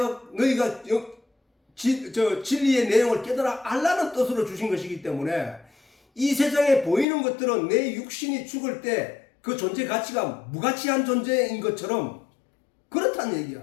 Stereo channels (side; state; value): right; drops out; at 7.1 s